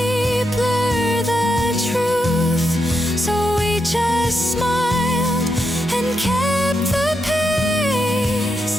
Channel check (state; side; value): normal; both; correlation 0.83